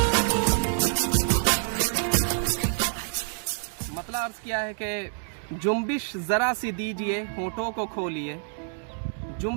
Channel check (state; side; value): silent; left; 60 dB below the other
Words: मतलब अर्ज़ किया है कि जुम्बिश ज़रा सी दीजिए होठों को खोलिए,